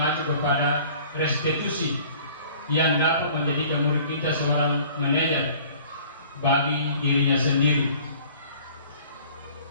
kepada restitusi yang dapat menjadikan murid kita seorang manajer bagi dirinya sendiri.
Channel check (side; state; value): both; inverted; correlation -0.50